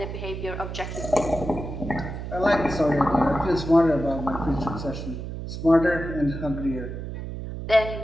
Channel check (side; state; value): right; noise; hum, 7 dB below the sound